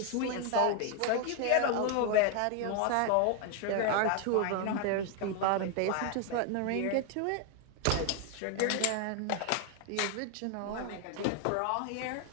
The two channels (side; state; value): both; different; correlation 0.01